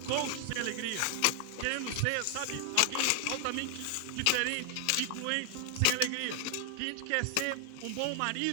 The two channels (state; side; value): different; both; correlation 0.00